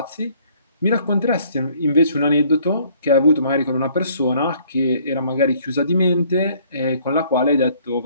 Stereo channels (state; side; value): inverted; both; correlation -0.60